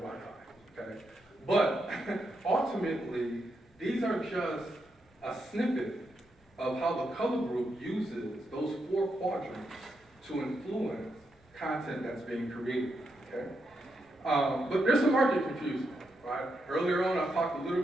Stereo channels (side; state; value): both; normal; correlation 0.83